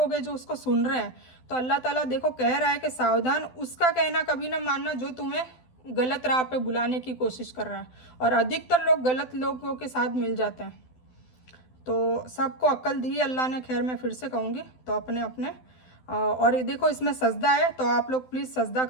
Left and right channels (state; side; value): late; right; 12 ms